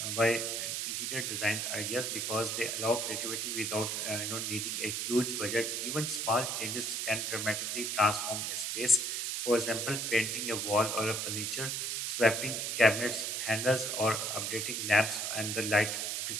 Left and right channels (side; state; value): right; noise; hiss, 1 dB below the sound